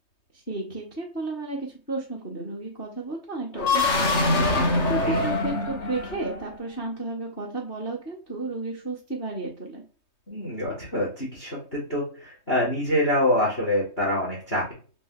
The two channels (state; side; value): late; right; 3.2 ms